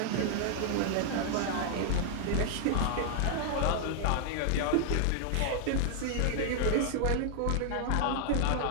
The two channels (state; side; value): different; both; correlation 0.00